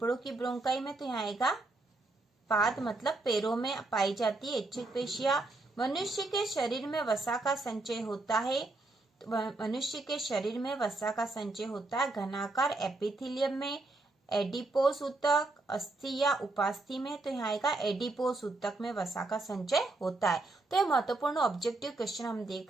की ब्रोंकाई में। तो यहाँ आएगा पाद मतलब पैरों में पाई जाती है ऐच्छिक पेशियां। मनुष्य के शरीर में वसा का संचय होता है। मनुष्य के शरीर में वसा का संचय होता है घनाकार एपिथेलियम में, एडिपोस ऊतक, अस्थि या उपास्थि में। तो यहाँ आएगा एडिपोस ऊतक में वसा का संचय होता है। तो ये महत्वपूर्ण ऑब्जेक्टिव क्वेश्चन हम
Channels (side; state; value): left; quieter; 3.0 dB